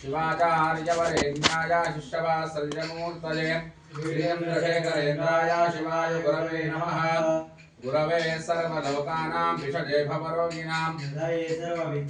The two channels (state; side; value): identical; both; correlation 1.00